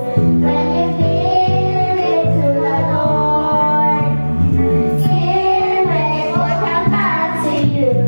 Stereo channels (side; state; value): both; inverted; correlation -1.00